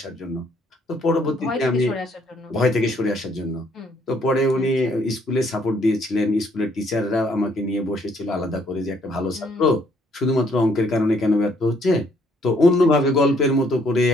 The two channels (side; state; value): both; normal; correlation 0.67